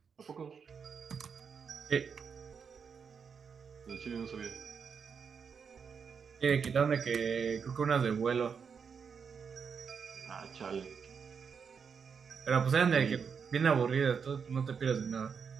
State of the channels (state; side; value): quieter; left; 6.3 dB